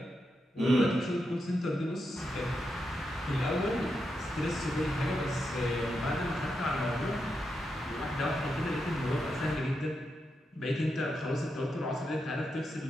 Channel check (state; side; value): normal; both; correlation 0.85